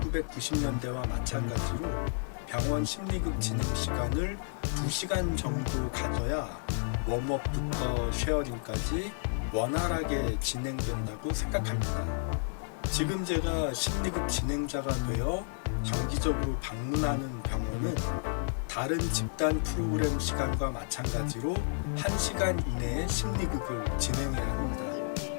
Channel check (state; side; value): silent; right; 57 dB below the other